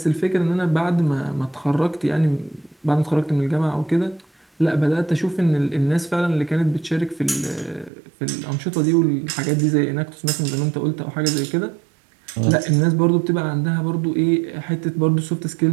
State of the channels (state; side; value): drops out; left; at 7.9 s